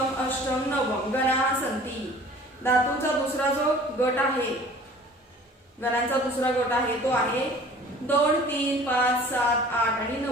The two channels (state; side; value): normal; both; correlation 0.47